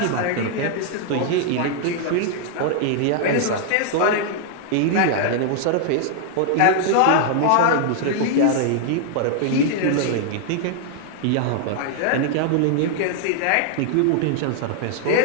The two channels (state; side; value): different; both; correlation 0.00